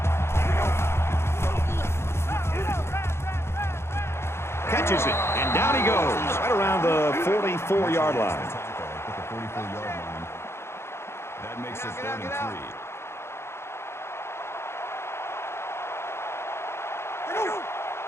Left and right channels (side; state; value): right; late; 0.12 ms